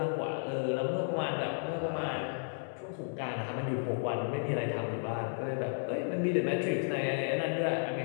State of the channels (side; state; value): right; silent; 56 dB below the other